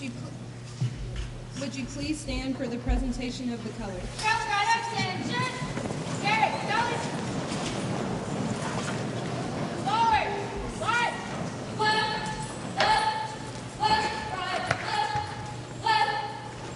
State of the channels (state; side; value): identical; both; correlation 1.00